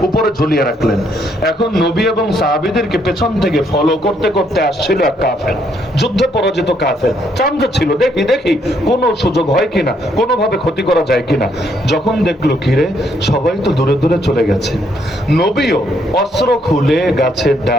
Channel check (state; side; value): normal; both; correlation 0.71